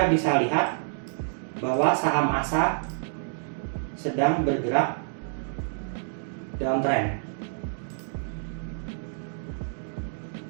bisa lihat bahwa saham ASA sedang bergerak downtrend.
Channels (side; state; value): left; silent; digital silence